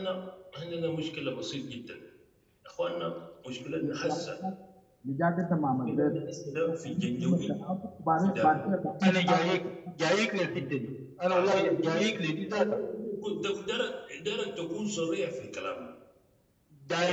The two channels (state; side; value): identical; both; correlation 1.00